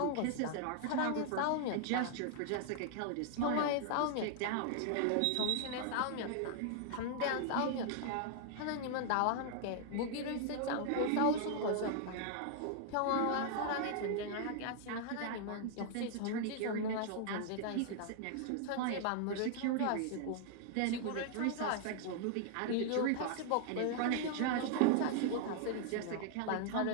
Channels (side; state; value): both; different; correlation 0.00